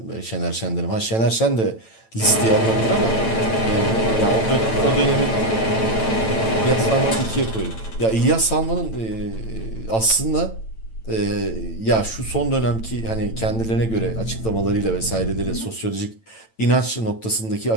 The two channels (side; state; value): right; late; 9.0 ms